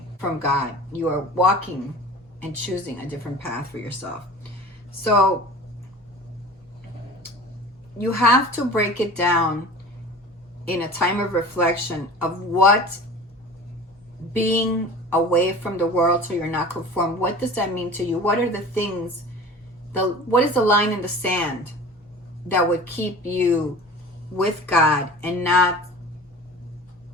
from God. You are walking and choosing a different path for yourself. So you have to break it down in a time of reflection of what being away from the world so you're not conformed, what does that mean to you? What are the things, what is the line in the sand that would keep you with God and not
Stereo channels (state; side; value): normal; both; correlation 0.39